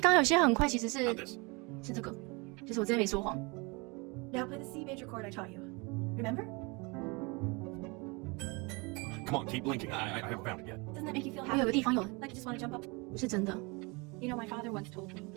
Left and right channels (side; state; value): left; quieter; 28.1 dB